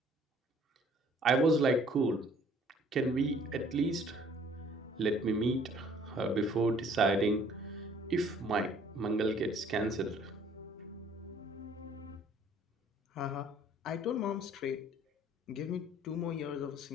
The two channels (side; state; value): both; normal; correlation 0.57